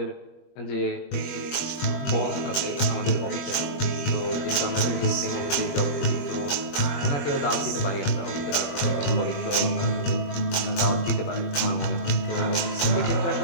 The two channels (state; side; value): late; right; 21 ms